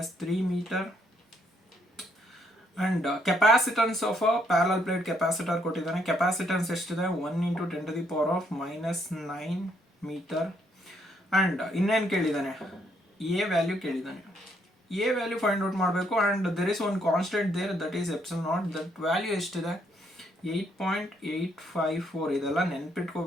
metre. And capacitance of a parallel plate capacitor ಕೊಟ್ಟಿದ್ದಾನೆ. Capacitance ಎಷ್ಟಿದೆ 1 × 10⁻⁻9 metre. And ಇನ್ನೇನು ಕೇಳಿದ್ದಾನೆ, ಎ ವ್ಯಾಲ್ಯೂ ಕೇಳಿದ್ದಾನೆ. ಎ ವ್ಯಾಲ್ಯೂ ಫೈಂಡ್ ಔಟ್ ಮಾಡಬೇಕು. And there is one constant there, that is epsilon naught. That value ಎಷ್ಟಿದೆ 8.854. ಇದೆಲ್ಲ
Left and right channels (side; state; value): both; normal; correlation 0.72